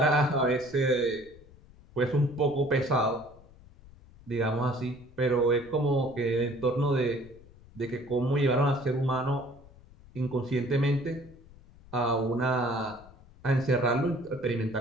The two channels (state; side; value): noise; left; rumble, 23 dB below the sound